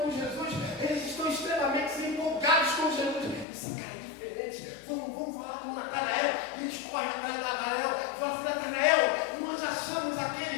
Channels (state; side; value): drops out; right; at 3.5 s